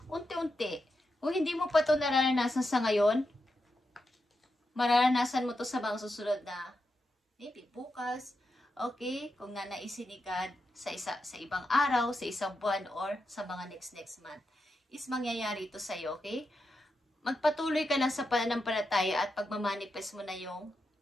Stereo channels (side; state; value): both; normal; correlation 0.87